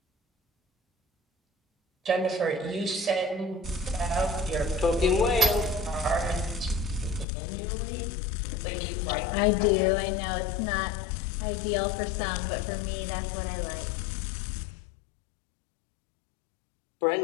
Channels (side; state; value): right; drops out; at 7.2 s